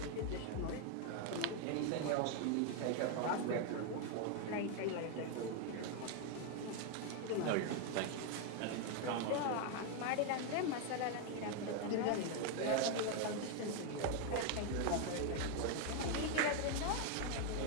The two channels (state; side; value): different; both; correlation 0.01